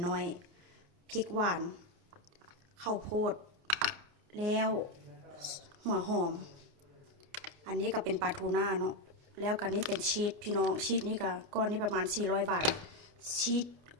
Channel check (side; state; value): left; late; 29 ms